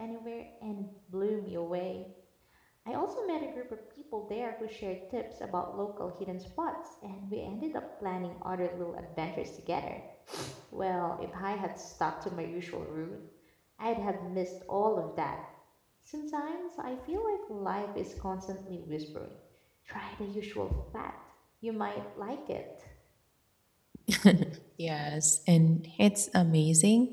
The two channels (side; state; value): both; identical; correlation 1.00